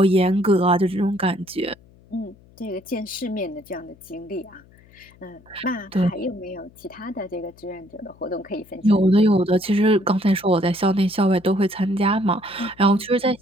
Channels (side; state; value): left; noise; hum, 27 dB below the sound